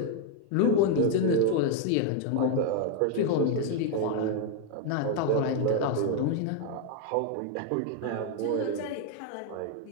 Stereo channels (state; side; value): different; both; correlation 0.01